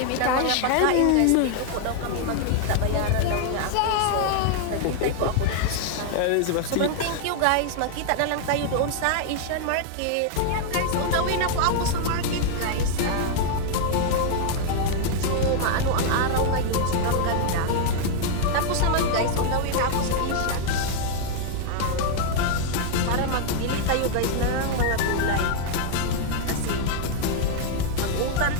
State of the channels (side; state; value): both; different; correlation 0.00